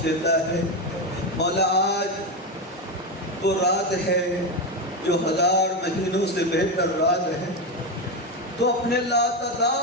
دیتا ہے مولا آج تو رات ہے جو 1000 مہینوں سے بہتر رات ہے تو اپنے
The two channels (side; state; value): both; normal; correlation 0.12